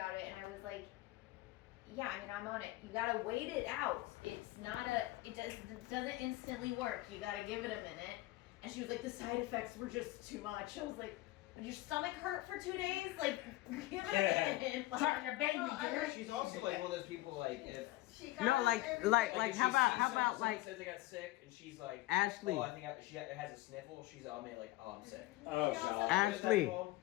it, and I was like, Yeah, I mean, I'm on it. You gotta wait it out. It's not it doesn't instantly work. You gotta give it a minute. And she was like, the side effects were just too much. I was like, did your stomach hurt for 2 days? Like, give it a minute. Like, your baby, dear. She's also like one of those people like if. No, like if how she about sees how about someone like says they got sick and she's like Ashley? oh I think she has a sniffle. She's I mean like oh I'm sick. Oh god. Ashley,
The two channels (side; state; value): right; quieter; 18.1 dB